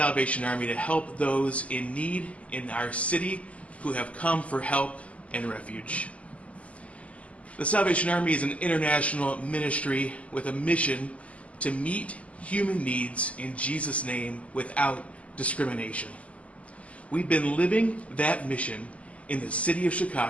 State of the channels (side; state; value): right; late; 0.066 ms